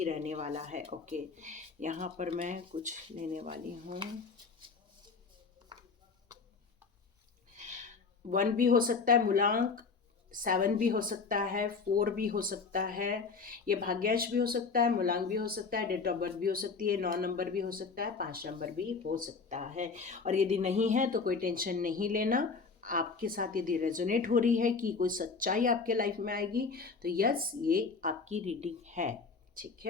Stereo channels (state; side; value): quieter; right; 4.8 dB